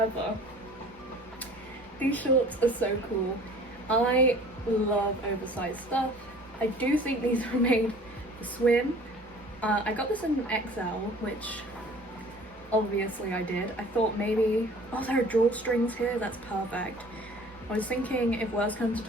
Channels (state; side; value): normal; both; correlation 0.48